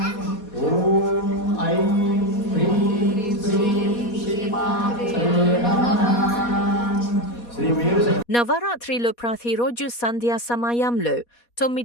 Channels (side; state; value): right; late; 4.2 ms